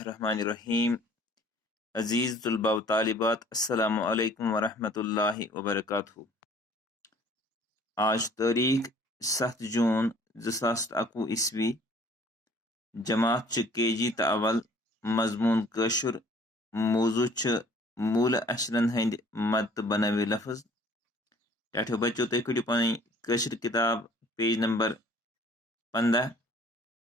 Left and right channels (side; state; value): both; normal; correlation 0.54